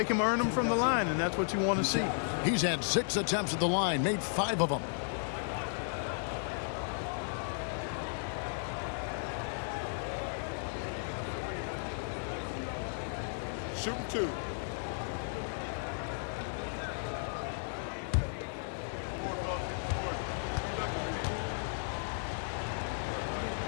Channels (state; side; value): silent; right; 55 dB below the other